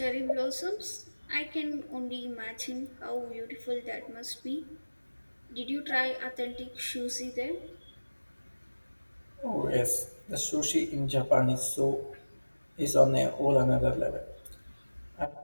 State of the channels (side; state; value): both; inverted; correlation -1.00